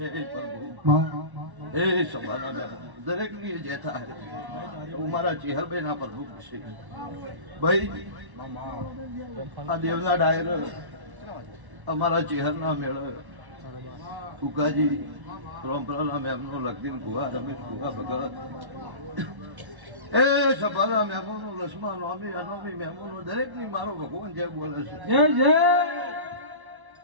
પ્રભુ એ સભાના દરેક ની જે થાય હું મારા ચેહરભાઈ ના પ્રભુ છે ભાઈ આ દેવના ડાયર અમારા ચેહરના મેળ ફુકાજી પરંપરાના મેમનો લગદીન ભુવા રમેશ ભુવા ભગત એ સભાના મેમોનો લક્ષ્મણ નોમી અનોમી મેમોનો દરેક ની મારો ભગવાન જય બોલે છે જય જય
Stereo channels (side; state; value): left; late; 1.1 ms